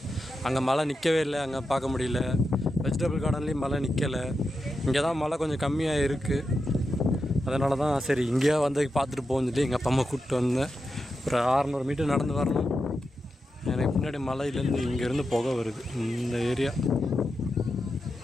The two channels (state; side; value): normal; both; correlation 0.88